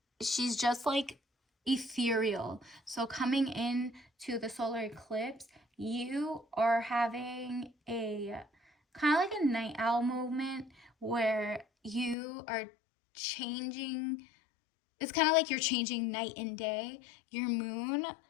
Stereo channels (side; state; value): right; drops out; at 12.2 s